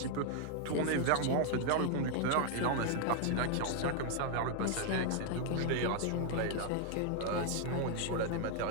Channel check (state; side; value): different; both; correlation 0.00